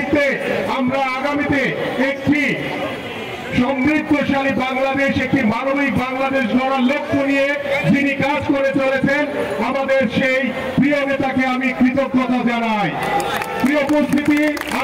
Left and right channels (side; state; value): both; identical; correlation 1.00